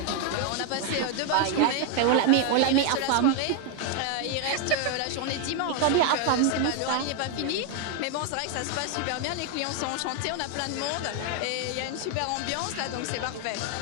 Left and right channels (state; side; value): different; both; correlation 0.01